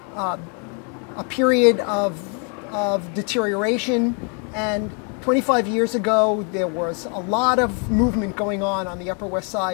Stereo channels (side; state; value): right; quieter; 38.2 dB